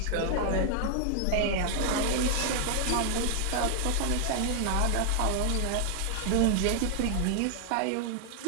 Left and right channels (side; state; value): both; different; correlation 0.00